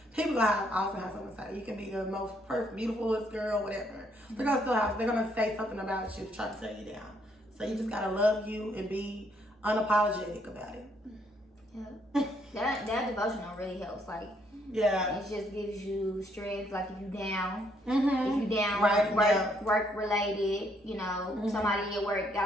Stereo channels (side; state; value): both; normal; correlation 0.70